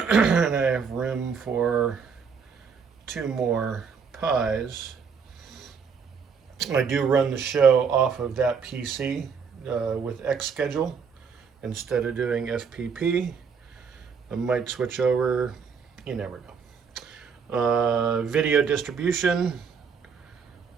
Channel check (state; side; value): quieter; left; 6.0 dB